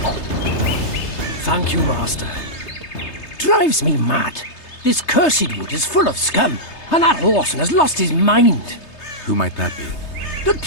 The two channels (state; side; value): late; right; 3.3 ms